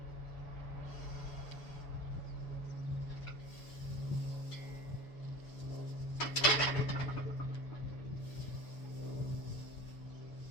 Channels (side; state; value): right; late; 6.8 ms